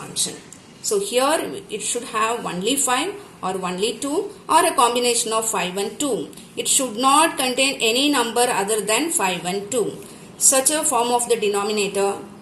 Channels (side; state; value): both; identical; correlation 1.00